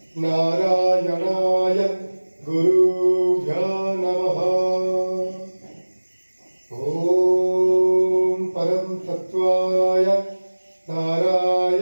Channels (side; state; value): both; inverted; correlation -1.00